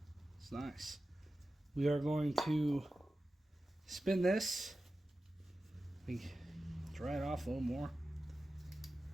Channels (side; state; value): both; normal; correlation 0.94